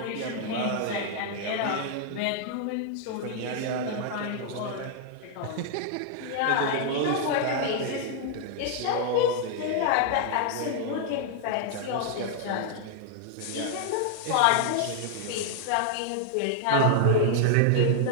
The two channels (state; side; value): different; both; correlation 0.00